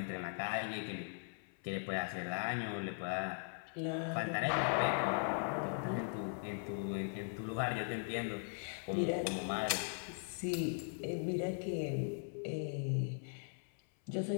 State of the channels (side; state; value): right; silent; 51 dB below the other